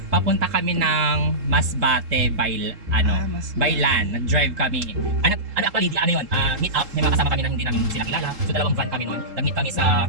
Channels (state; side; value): late; left; 3.7 ms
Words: Papunta kami ng Masbate by Masbate. by land. Nag-drive kami. Actually, yun? Meet up. May mga kasama kami na hindi namin sila kilala. So, dalawang van kami noon. Nag-meet kami sa